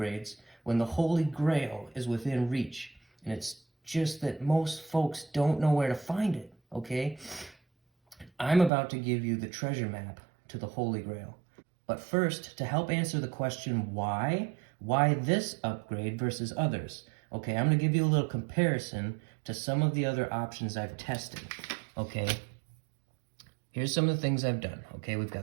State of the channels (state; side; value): drops out; left; at 8.7 s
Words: when the holy grail is within reach. And it's just that most folks don't know where to find it, okay? I'm about to give you the treasure map to the holy grail. But first, to help answer the question why this upgrade versus others, okay, I'm going to give you a little comparison to some of the other options I've tested, okay? Here's some of the things I've done, okay? We've